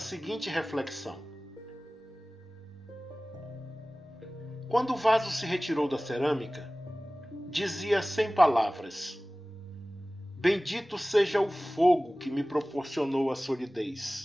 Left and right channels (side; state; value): both; normal; correlation 0.98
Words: reflexão: quando o vaso se retirou da cerâmica, dizia sem palavras: Bendito seja o fogo que me proporcionou a